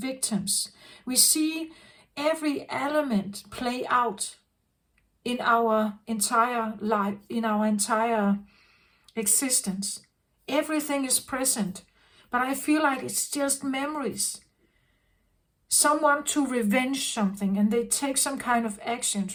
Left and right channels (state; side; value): identical; both; correlation 1.00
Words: We see every element play out in our entire life, in our entire existence. Everything is present, but I feel like it's just memories. Someone to revenge something, and they take some kind of actions,